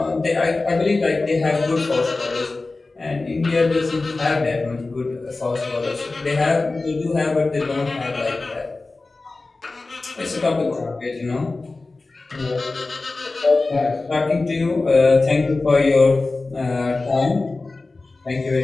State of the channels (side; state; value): right; quieter; 3.4 dB